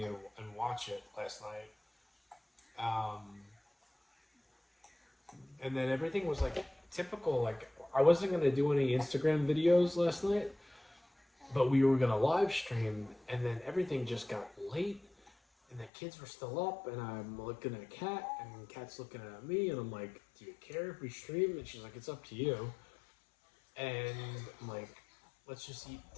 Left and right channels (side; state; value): right; drops out; at 15.9 s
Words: and watch it last night. And then everything was like typical. Like I wasn't going to do any Instagram videos last night, but we were going to live stream, and then everything just got late. And the kids were still up, and I'm looking at Kat, and Kat's looking at me, and I'm like, do you care if we stream? And she's like, it's up to you. And I'm like, let's just eat